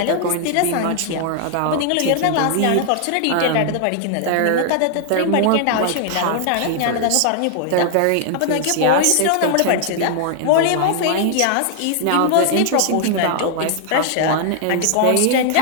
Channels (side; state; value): both; different; correlation 0.00